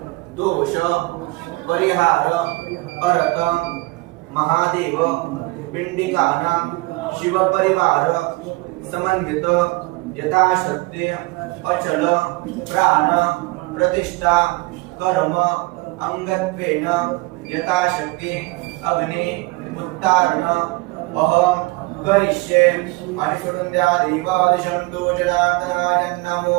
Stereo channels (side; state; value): left; quieter; 23.3 dB